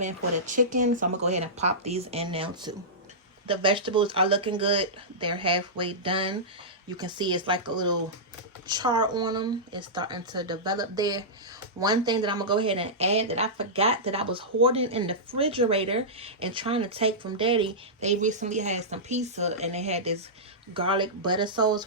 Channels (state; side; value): normal; both; correlation -0.14